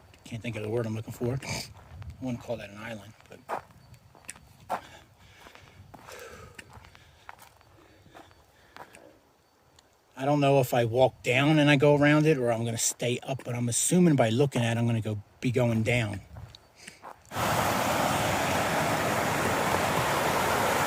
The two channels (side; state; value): both; identical; correlation 1.00